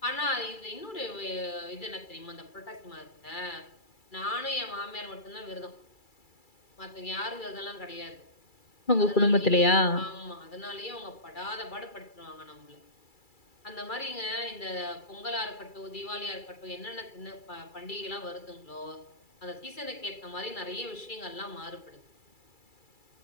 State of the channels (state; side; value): late; right; 2.3 ms